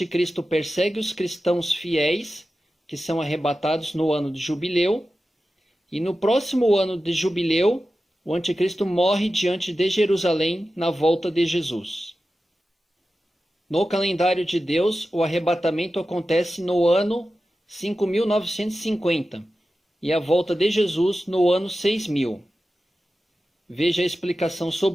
persegue os cristãos fiéis, que são arrebatados no ano de jubileu, e no próximo ano de jubileu, o Anticristo morre diante de Jerusalém na volta de Jesus. No calendário de Deus, o arrebatamento acontece no ano 5.950 e a volta de Jesus no ano 6.000. Veja a explicação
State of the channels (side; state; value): both; normal; correlation 0.93